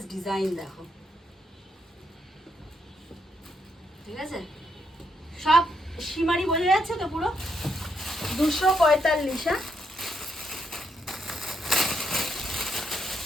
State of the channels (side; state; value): both; normal; correlation 0.77